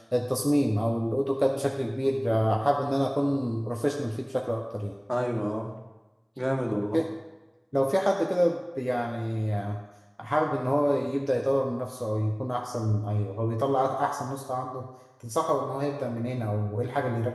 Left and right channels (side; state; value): both; identical; correlation 1.00